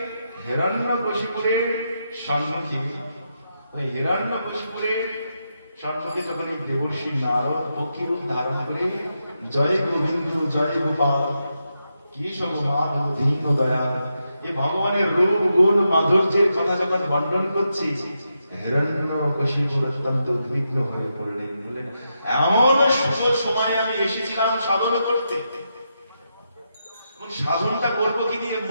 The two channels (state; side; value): inverted; both; correlation -0.85